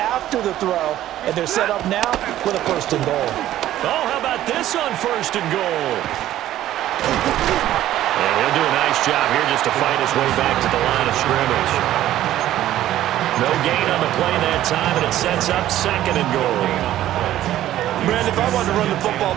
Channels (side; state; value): left; quieter; 13.3 dB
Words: the throw. And they're set up now with a 1st and goal. Oh, how about this on 1st and goal? And he'll do a nice job here just to fight his way back to the line of scrimmage. No gain on the play that time, and it sets up 2nd and goal. Man, if I wanted to run the football